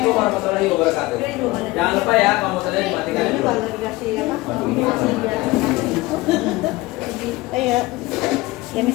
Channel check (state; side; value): quieter; right; 20.5 dB